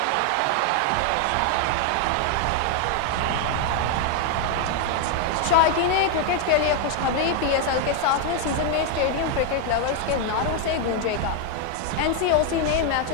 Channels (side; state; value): both; different; correlation 0.01